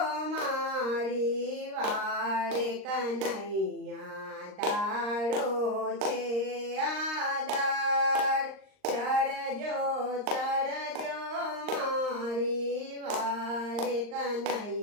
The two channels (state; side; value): late; left; 39 ms